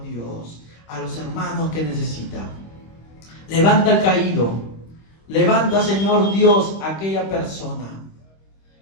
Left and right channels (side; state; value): right; late; 25 ms